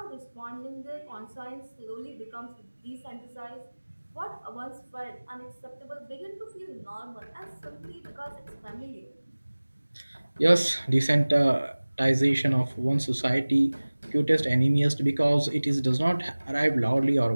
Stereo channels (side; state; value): both; inverted; correlation -1.00